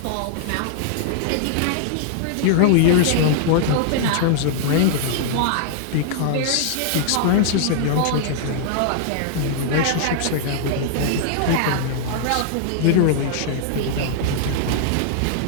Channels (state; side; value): different; both; correlation -0.01